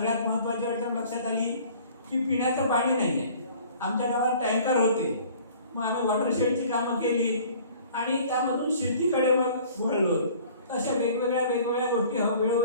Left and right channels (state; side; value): inverted; both; correlation -0.50